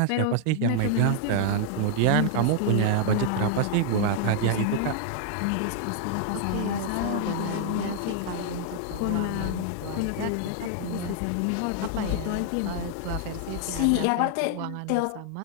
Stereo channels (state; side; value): different; both; correlation 0.00